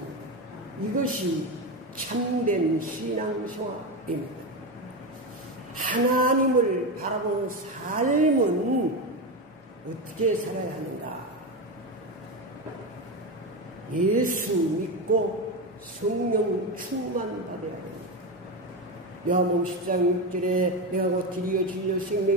이것이 참된 신앙생활입니다. 하나님을 바라보는 삶은 어떻게 살아야 하는가? 예수 믿고 성령 충만 받아야 합니다. 요한복음 10장 6절에 내가 곧 길이요 진리요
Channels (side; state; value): both; normal; correlation 0.16